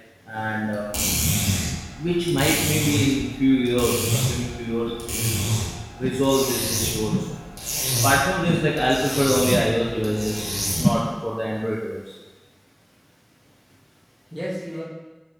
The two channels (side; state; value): both; identical; correlation 1.00